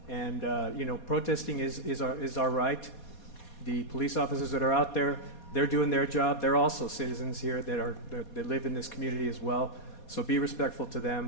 And protesting is our right. The police officers that are out there, they're doing their job. They're also citizens here that live in this community as well. So be respectful to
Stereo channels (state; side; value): late; right; 4.2 ms